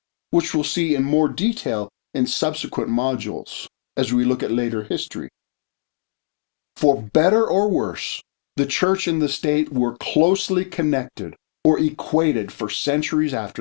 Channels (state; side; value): silent; right; digital silence